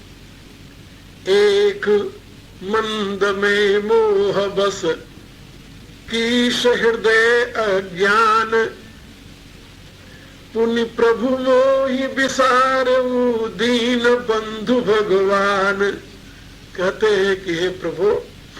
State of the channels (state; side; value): identical; both; correlation 1.00